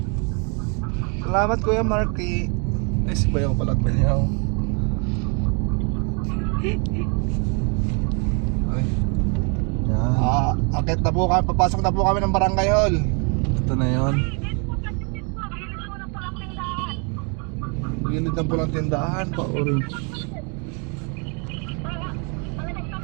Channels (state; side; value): quieter; left; 35.6 dB